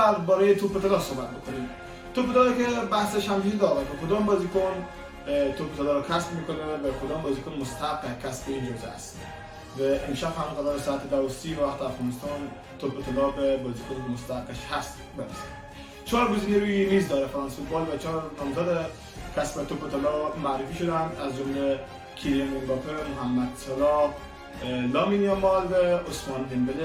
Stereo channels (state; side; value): identical; both; correlation 1.00